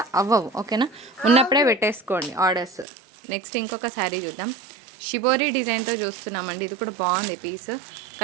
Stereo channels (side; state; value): left; drops out; at 2.9 s